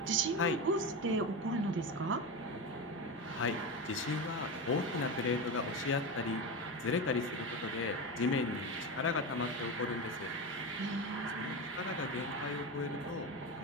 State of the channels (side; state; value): both; normal; correlation 0.19